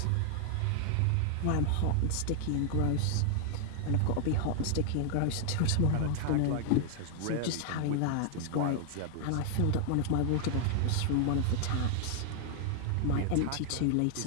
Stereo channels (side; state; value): both; different; correlation 0.00